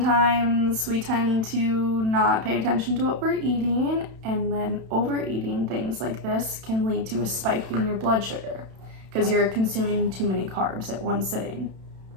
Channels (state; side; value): late; left; 32 ms